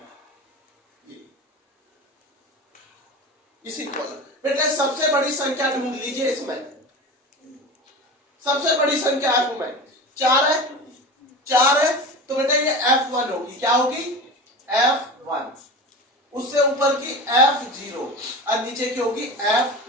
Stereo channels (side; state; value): both; normal; correlation 0.30